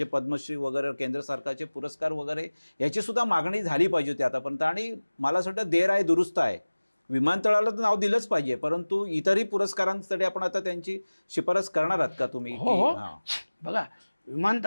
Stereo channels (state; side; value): inverted; both; correlation -1.00